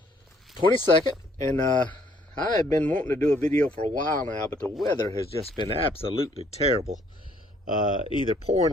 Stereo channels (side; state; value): both; normal; correlation 0.64